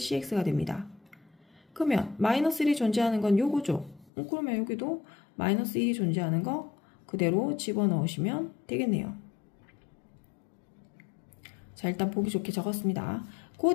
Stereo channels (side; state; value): right; drops out; at 4.1 s